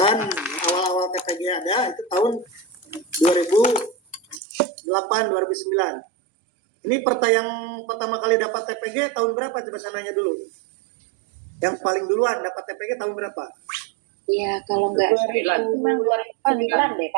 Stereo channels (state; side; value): drops out; left; at 4.4 s